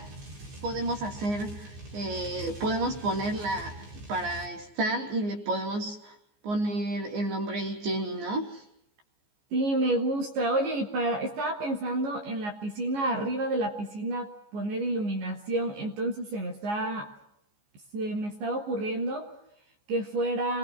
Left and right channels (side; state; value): left; late; 14 ms